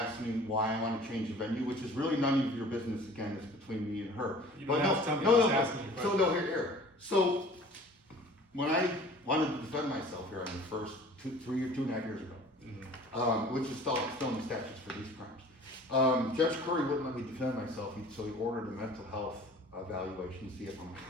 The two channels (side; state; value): both; normal; correlation 0.47